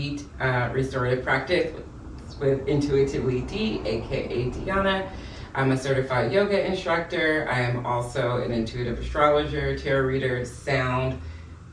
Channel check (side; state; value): both; identical; correlation 1.00